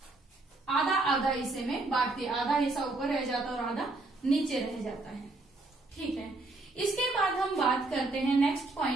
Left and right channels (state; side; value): quieter; left; 3.1 dB